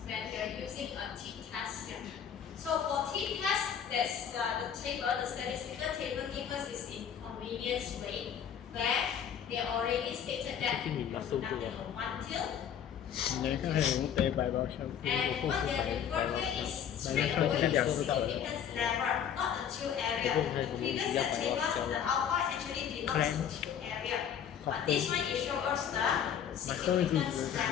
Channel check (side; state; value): right; quieter; 8.6 dB